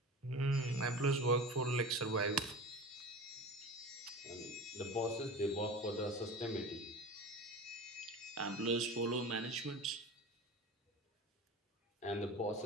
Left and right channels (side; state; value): both; normal; correlation 0.33